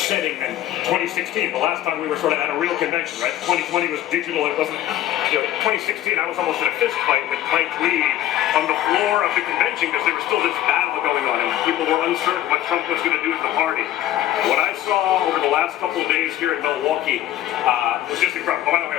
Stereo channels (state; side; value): quieter; right; 13.1 dB